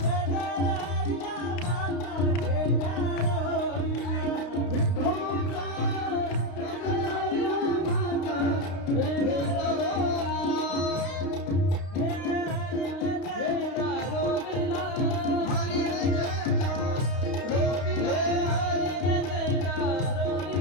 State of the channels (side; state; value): right; late; 32 ms